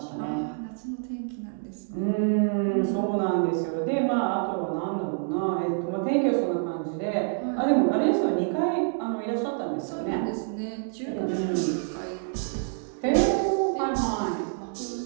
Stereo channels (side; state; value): left; silent; digital silence